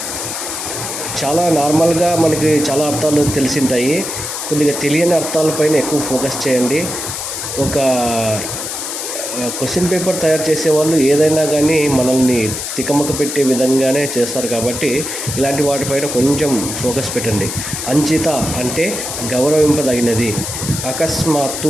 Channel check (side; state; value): left; noise; hiss, 5 dB below the sound